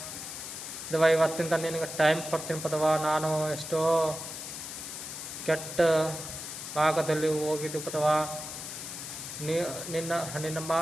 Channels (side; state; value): left; noise; hiss, 8 dB below the sound